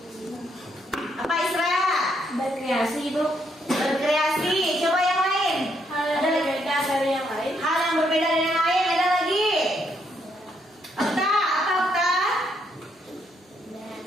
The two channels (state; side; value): normal; both; correlation 0.74